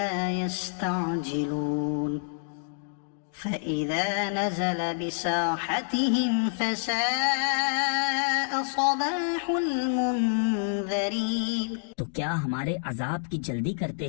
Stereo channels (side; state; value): right; silent; digital silence